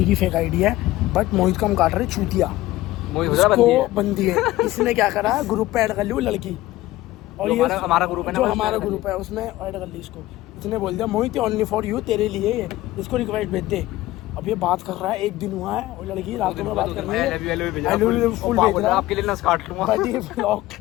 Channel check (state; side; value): quieter; right; 16.8 dB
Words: की फेक आईडी है, बट मोहित का हम काट रहे चूतिया, उसको बंदी है। इसने क्या करा, ग्रुप पे ऐड कर ली वो लड़की, और ये हमारा ग्रुप है ना, जो हमारा ग्रुप है उसमें ऐड कर ली इसको। इसने बोल दिया मोहित ओनली फॉर यू, तेरे लिए है, इसको रिक्वेस्ट भेज दे। अब ये बात कर रहा है, एक दिन हुआ है, और लड़की रातों में बात कर रही है, आपके लिए ना काट लूंगा। ब्लॉग।